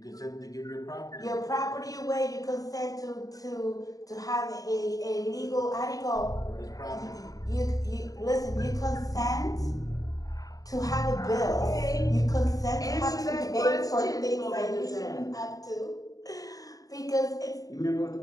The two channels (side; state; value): right; late; 0.18 ms